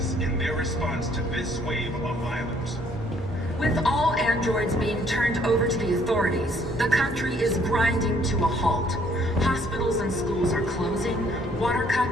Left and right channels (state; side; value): normal; both; correlation 0.63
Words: in their response to this wave of violence. With all androids being turned over to the authorities, the country is grinding to a halt. Hospitals and schools are closing, water